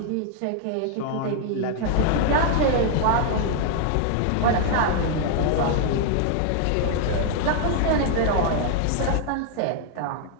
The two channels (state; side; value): different; both; correlation 0.00